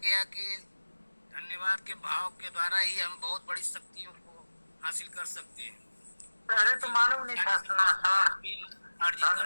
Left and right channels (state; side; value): inverted; both; correlation -1.00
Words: कि धन्यवाद के भाव के द्वारा ही हम बहुत बड़ी शक्तियों को हासिल कर सकते हैं। पहले तो मालूम नहीं था सुना सर। भी अर्जित कर